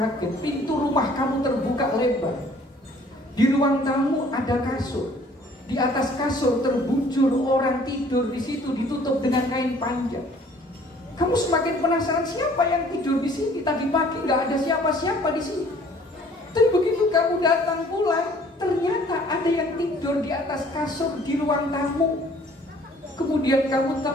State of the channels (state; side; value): normal; both; correlation 0.56